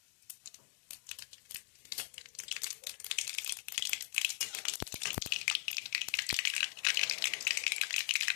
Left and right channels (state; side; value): silent; right; digital silence